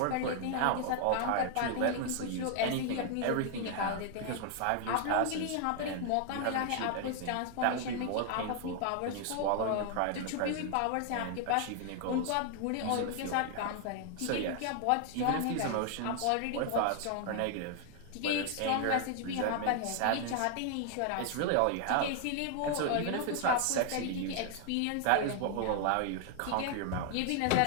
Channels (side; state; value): both; different; correlation 0.00